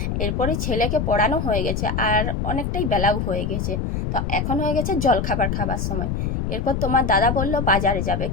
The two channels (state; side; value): noise; left; rumble, 1 dB below the sound